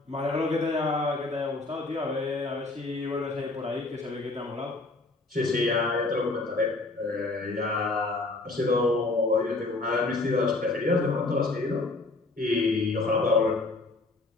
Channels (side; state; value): right; quieter; 3.3 dB